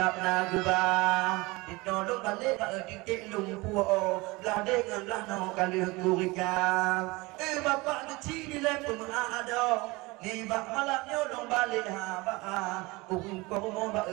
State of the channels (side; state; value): left; quieter; 23.5 dB